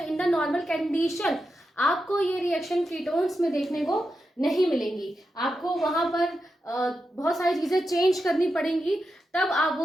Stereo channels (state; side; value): normal; both; correlation 0.88